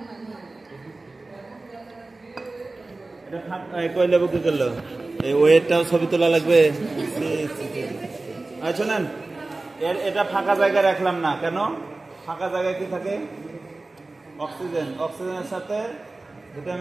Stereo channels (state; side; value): quieter; left; 3.2 dB